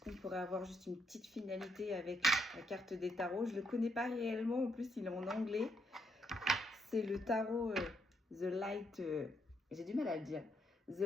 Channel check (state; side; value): normal; both; correlation 0.76